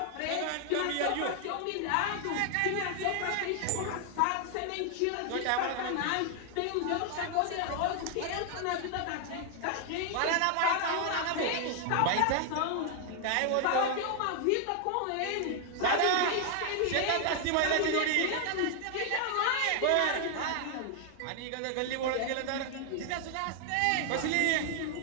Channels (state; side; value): different; both; correlation 0.00